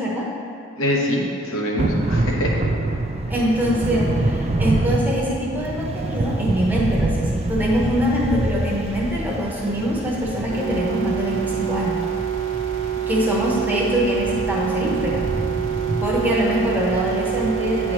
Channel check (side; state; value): both; normal; correlation 0.59